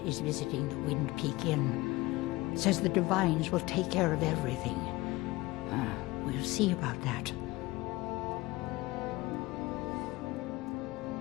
is visiting the Wind Peak Inn. Says the divines will take care of everything. We'll see about that.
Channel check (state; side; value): quieter; right; 20.6 dB